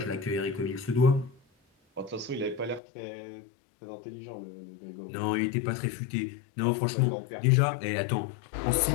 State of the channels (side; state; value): right; drops out; at 2.8 s